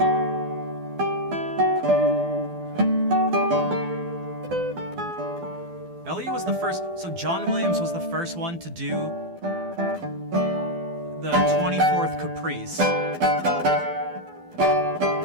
Elliot was the first, so John Williams was the first one to do the 24th Caprice.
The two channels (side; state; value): left; late; 12 ms